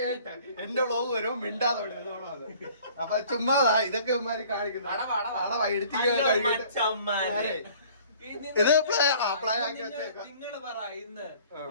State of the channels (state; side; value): inverted; both; correlation -0.52